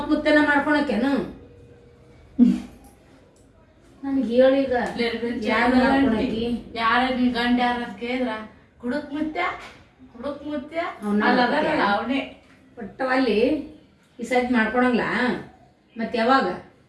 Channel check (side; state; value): both; identical; correlation 1.00